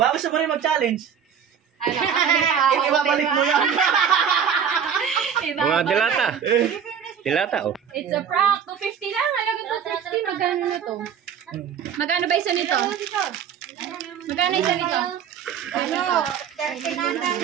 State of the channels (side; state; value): left; quieter; 7.8 dB